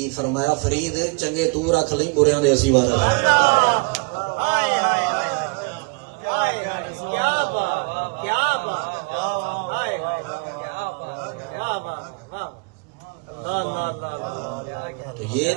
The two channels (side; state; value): left; quieter; 31.2 dB